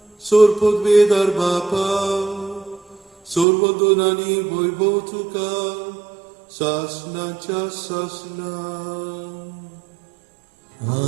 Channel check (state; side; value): drops out; left; at 3.5 s